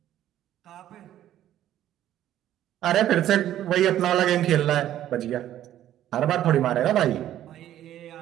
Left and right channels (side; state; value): left; quieter; 12.2 dB